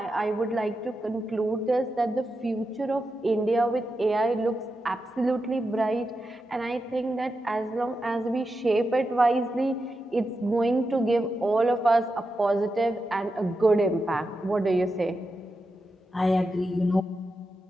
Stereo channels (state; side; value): normal; both; correlation 0.88